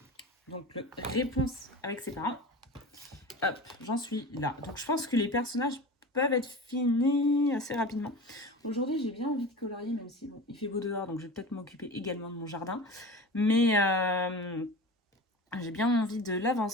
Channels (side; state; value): both; normal; correlation 0.32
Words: Donc, le réponse avec ses parents. Hop, j'en suis là. Donc je pense que les personnages peuvent être finis assez rapidement. Aujourd'hui, j'ai bien envie de colorier, même si bon, il fait beau dehors, donc je vais peut-être m'occuper également de mon jardin. Mais j'ai bien envie de